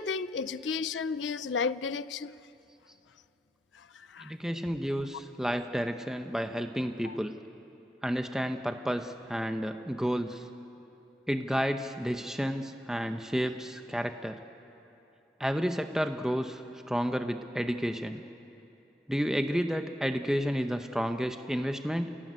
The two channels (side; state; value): both; normal; correlation 0.85